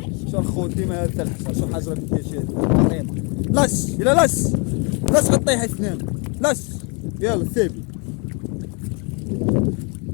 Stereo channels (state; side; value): quieter; right; 33.6 dB